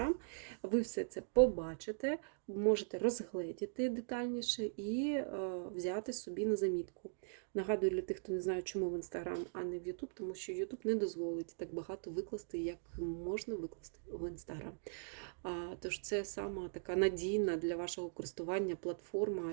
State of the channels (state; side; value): silent; left; digital silence